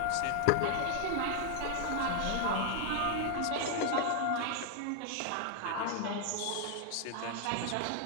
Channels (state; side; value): different; both; correlation 0.00